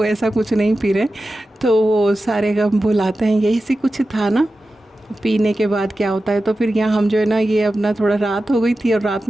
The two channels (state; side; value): normal; both; correlation 0.93